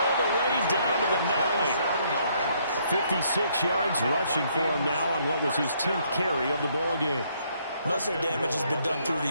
the way down to the 9. 56 yards rushing for him now on what was his 10th carry of the ball game. Most of their damage has been done through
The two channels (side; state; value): both; inverted; correlation -0.69